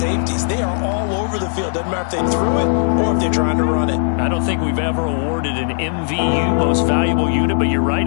They are all over the field. Doesn't matter if they threw it or if they're trying to run it. I don't think we've ever awarded an MVU, most valuable unit, but you're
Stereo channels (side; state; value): right; silent; digital silence